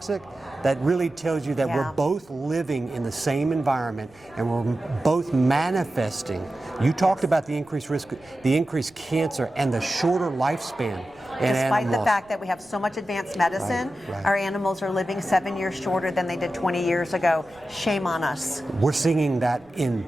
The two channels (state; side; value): noise; right; rumble, 29 dB below the sound